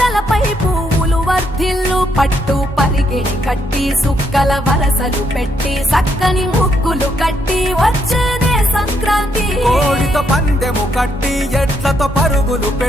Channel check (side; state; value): both; normal; correlation 0.75